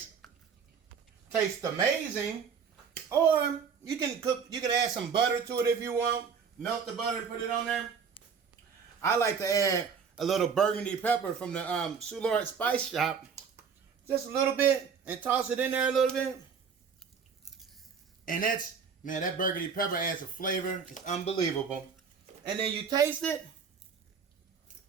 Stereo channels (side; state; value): left; quieter; 6.3 dB